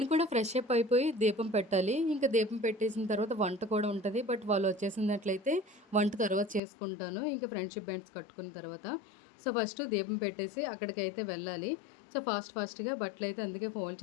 కూడా ఫ్రెష్ అప్ అయిపోయి దీపం పెట్టాలి. ఇంకా దీపం పెట్టేసిన తర్వాత వంట కూడా ఉంటుంది. బట్ వాళ్ళు వచ్చేసినట్లయితే వంట తర్వాత చేసుకుంటాను, ఇంకా ఫ్రెండ్షిప్ బ్యాండ్స్ కట్టుకున్న తర్వాత. సో ఫస్ట్ దీపం పెట్టేసి అక్కడికైతే వెళ్ళాలి. సో ఫాస్ట్గా బట్టలు అయితే అందుకే ఫోల్డ్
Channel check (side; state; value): right; drops out; at 6.6 s